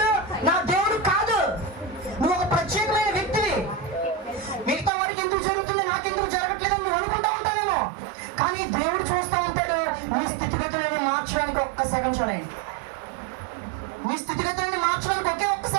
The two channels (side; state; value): left; drops out; at 4.9 s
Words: నా దేవుడు కాదు. నువ్వు ఒక ప్రత్యేకమైన వ్యక్తివి. మిగతా వారికి ఎందుకు జరుగుతుంది, నాకెందుకు జరగట్లేదని నువ్వు అనుకుంటా ఉంటావేమో. కానీ దేవుడు చూస్తూ ఉంటాడు నీ స్థితిగతులను మార్చడానికి ఒక్క సెకండ్ చాలండి. నీ స్థితిగతులను మార్చడానికి ఒకే ఒక్క